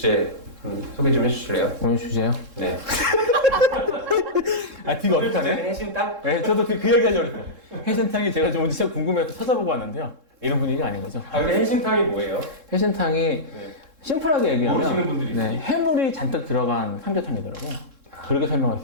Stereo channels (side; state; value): left; late; 3.7 ms